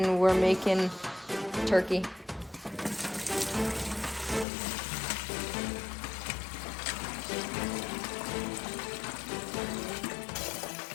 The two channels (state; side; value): drops out; right; at 4.5 s